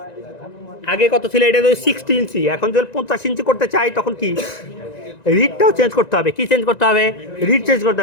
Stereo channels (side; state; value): right; late; 1.9 ms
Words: আগে কত ছিল, এটা তো 60 ইঞ্চি, এখন যদি 50 ইঞ্চি করতে চাই, তখন কি রিডটাও চেঞ্জ করতে হবে। কি চেঞ্জ করতে হবে, রিড চেঞ্জ করতে